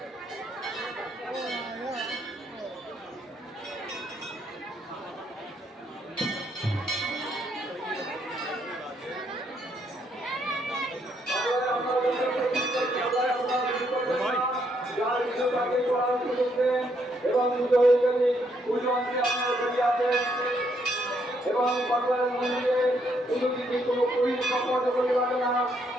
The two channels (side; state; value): both; normal; correlation 0.73